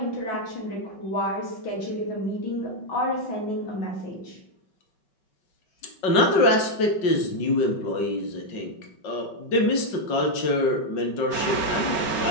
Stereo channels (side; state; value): right; late; 5.3 ms